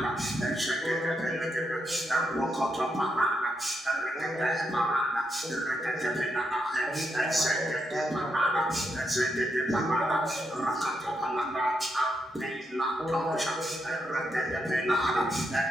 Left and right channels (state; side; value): normal; both; correlation 0.82